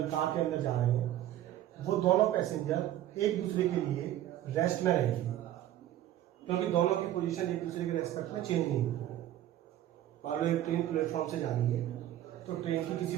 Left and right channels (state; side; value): quieter; left; 12.8 dB